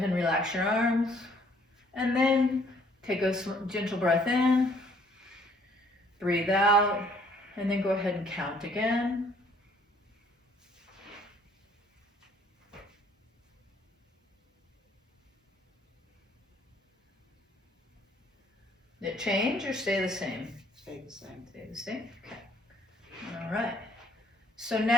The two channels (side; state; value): both; normal; correlation 0.62